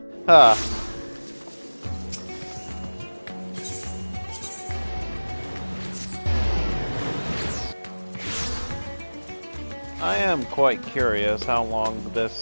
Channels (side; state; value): both; inverted; correlation -1.00